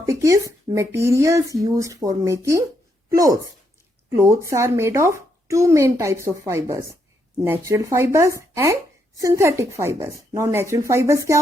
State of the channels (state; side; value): normal; both; correlation 0.77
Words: is materials used for making clothes. Clothes are made of two main types of fibers, natural fibers and synthetic fibers. Now natural fibers क्या